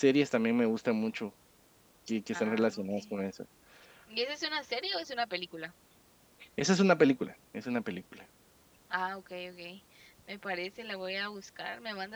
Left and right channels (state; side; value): identical; both; correlation 1.00